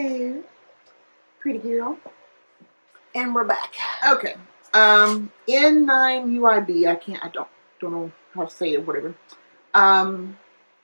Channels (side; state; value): both; inverted; correlation -1.00